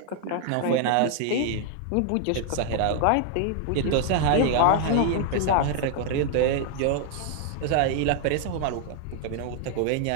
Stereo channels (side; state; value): both; different; correlation 0.00